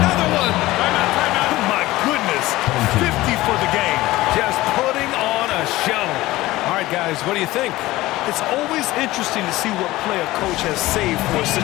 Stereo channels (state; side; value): quieter; right; 17.9 dB